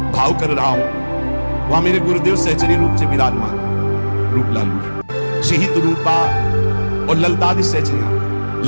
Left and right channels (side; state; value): both; inverted; correlation -1.00